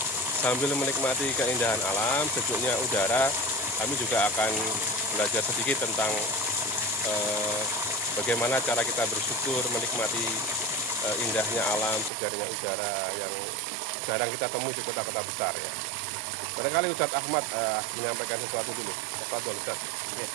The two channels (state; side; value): drops out; left; at 12.1 s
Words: sambil menikmati keindahan alam, sejuknya udara, kami juga akan belajar sedikit tentang bagaimana cara kita bersyukur menikmati indahnya alam, segarnya udara yang jarang kita temui di kota-kota besar ya. Barangkali Ustadz Ahmad menyampaikan sesuatu dulu. Tafadhol Ustadz. Oke.